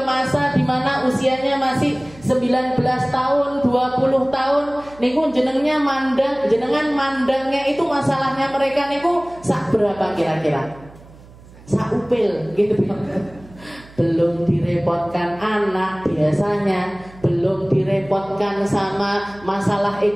masa di mana usianya masih 19 tahun, 20 tahun niku jenengan mandangnya itu masalahnya mereka niku sak berapa kira-kira? Sak upil gitu. Belum direpotkan anak biasanya, belum direpotkan sama masalah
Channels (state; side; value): noise; right; hum, 22 dB below the sound